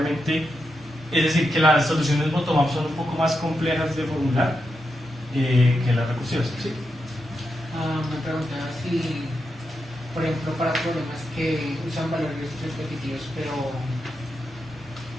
es decir, que las soluciones bottom-up son un poco más complejas de formular que las recursivas, ¿sí? Me preguntaba si, por ejemplo, para problemas que usan valores repetitivos, pero, o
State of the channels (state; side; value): normal; both; correlation 0.86